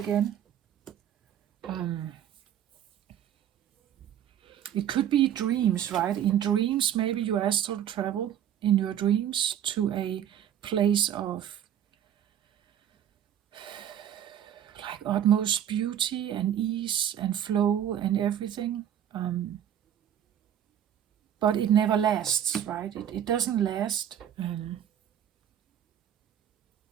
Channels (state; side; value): quieter; left; 10.1 dB